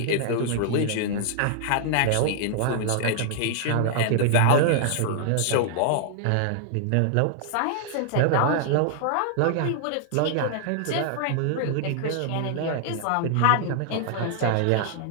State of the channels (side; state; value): both; different; correlation -0.01